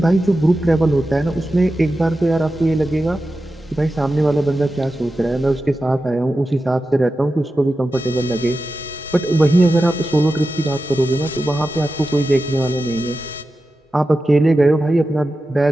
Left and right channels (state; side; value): normal; both; correlation 0.92